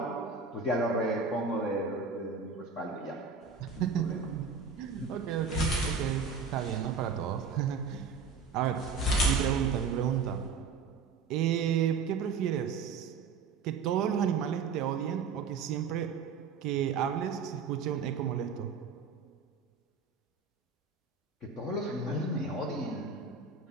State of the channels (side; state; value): left; quieter; 5.2 dB